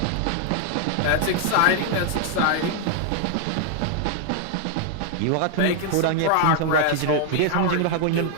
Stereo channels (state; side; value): different; both; correlation 0.00